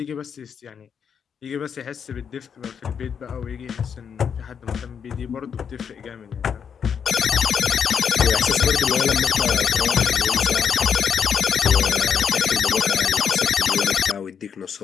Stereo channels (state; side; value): quieter; right; 7.2 dB